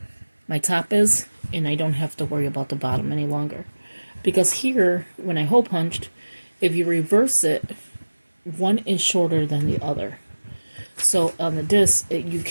my top is. And I don't have to worry about the bottom any longer. Because here, when I hole punched, if you reverse it, one is shorter than the other. So on the disc, you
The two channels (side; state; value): both; inverted; correlation -1.00